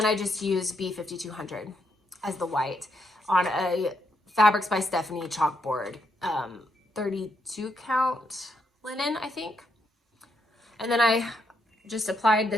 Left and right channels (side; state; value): both; normal; correlation 0.78